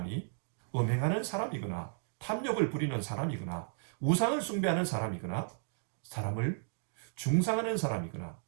음행하는 사람이거나 탐욕을 부리는 사람이거나 우상을 숭배하는 사람이거나 사람을 중상하는 사람이거나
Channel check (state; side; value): silent; left; digital silence